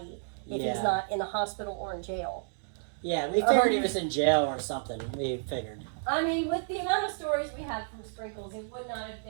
if Yeah. he's not in the hospital or in jail. yeah, we figured he was in jail or something. We figured. I mean, with the amount of stories we had from Sprinkles, it would not have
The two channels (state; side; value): silent; left; digital silence